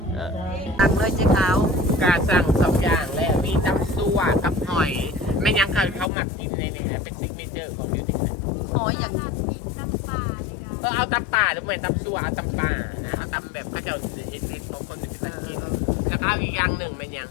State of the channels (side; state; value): right; drops out; at 6.1 s